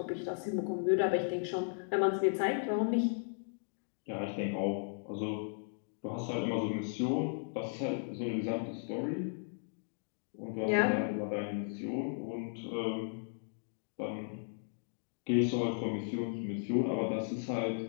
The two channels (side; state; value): right; silent; digital silence